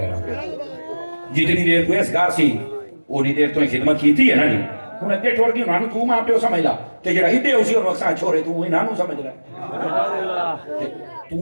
رہا ہوں جتنی دیر تو اس گھر سی اونی دیر تو خدمت کیتی ہے نا جی ہوں اگے ٹوڑ گئی انہوں تو ماں پیو سمجھ لا کہ جڑا ہدے اسی اور وقت چھوڑے تو انہوں سمجھ لا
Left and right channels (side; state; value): both; inverted; correlation -1.00